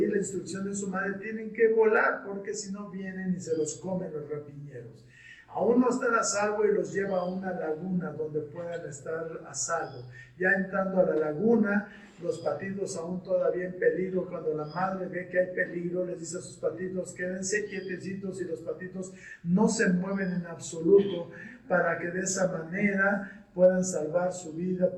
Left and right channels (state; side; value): identical; both; correlation 1.00